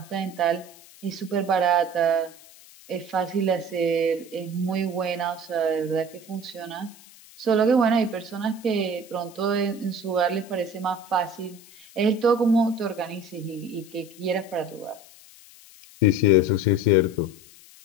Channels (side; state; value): left; noise; hiss, 22 dB below the sound